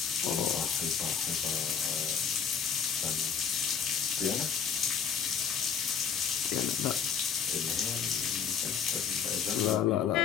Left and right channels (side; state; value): right; quieter; 7.1 dB